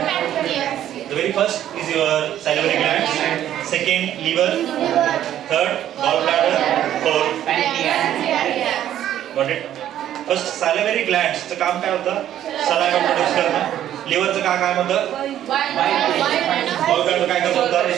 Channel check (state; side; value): quieter; left; 11.5 dB